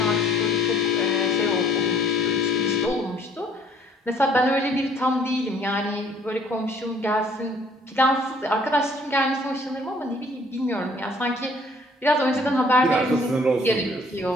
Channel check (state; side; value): normal; both; correlation 0.59